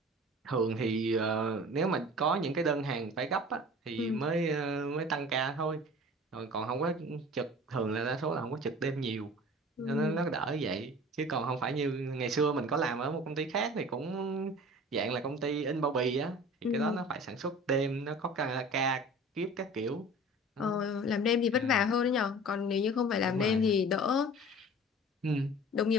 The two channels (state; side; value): normal; both; correlation 0.42